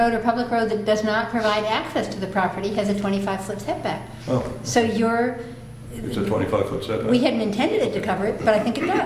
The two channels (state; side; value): identical; both; correlation 1.00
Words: or public road that does not provide access to the property has a 25-foot setback. Oh, So it's a 25-foot setback. we hadn't intended it to cover it, but I think it